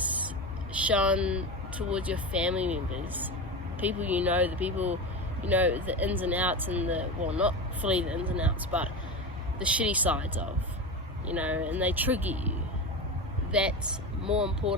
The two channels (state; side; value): normal; both; correlation 0.22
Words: shown towards your family members, people the people, the ins and outs and not fully the ins and outs, but the shitty sides of, and they trigger you. That's more